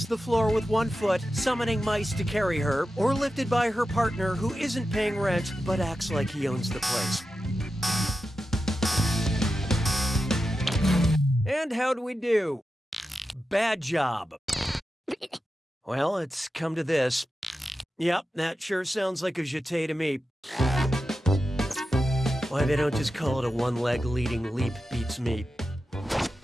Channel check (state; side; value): normal; both; correlation 0.91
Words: the floor with one foot, summoning mice to carry her, or lifted by her partner who isn't paying rent but acts like he owns the place. And how do we do? Bad job. Well, it's come to this. Yep, that sure sounds like a jeté to me. Why they don't just call it a one-leg leading leap beats me.